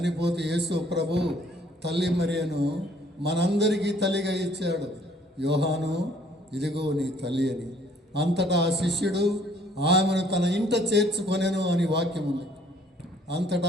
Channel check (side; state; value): both; normal; correlation 0.60